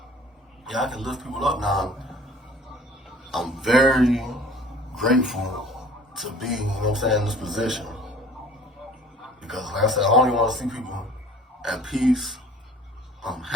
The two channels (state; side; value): normal; both; correlation 0.49